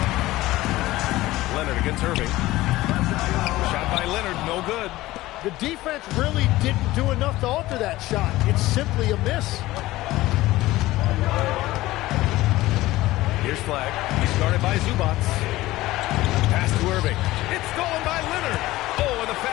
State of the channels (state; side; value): quieter; right; 17.5 dB